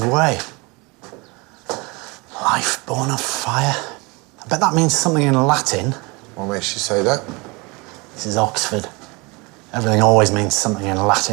way. Life born of fire. I bet that means something in Latin. What makes you say that? This is Oxford. Everything always means something in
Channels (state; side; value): quieter; left; 27.0 dB